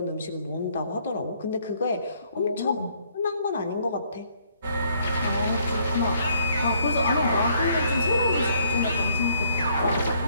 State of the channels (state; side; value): inverted; both; correlation -0.66